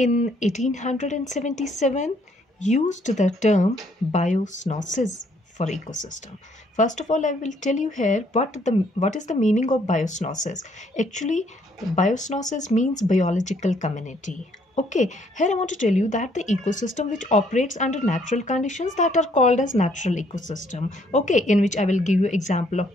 1877 used the term biosnosis for ecosystem. First of all, I will tell you here what is the meaning of biosnosis. Actually, biosnosis means biological community. Okay, here I want to tell you that the ecosystem which operates under natural conditions that are called as natural ecosystem. Okay, in which I will give you example of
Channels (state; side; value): normal; both; correlation 0.67